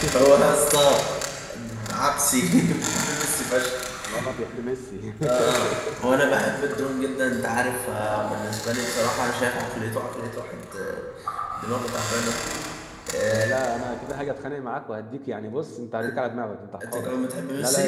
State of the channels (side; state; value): both; identical; correlation 1.00